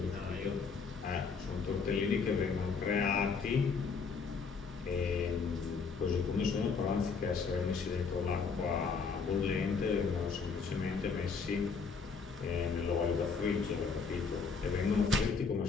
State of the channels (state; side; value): quieter; right; 5.3 dB